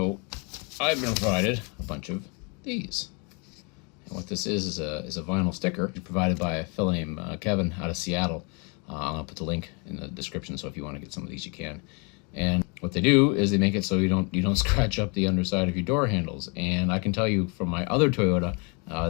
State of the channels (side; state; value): right; quieter; 33.1 dB